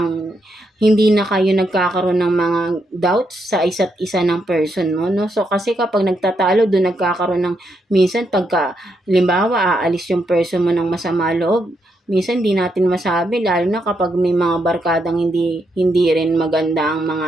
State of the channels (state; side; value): normal; both; correlation 0.80